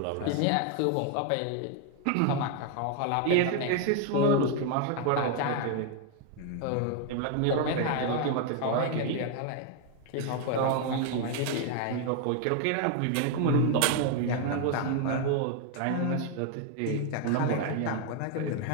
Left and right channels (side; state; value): both; different; correlation 0.01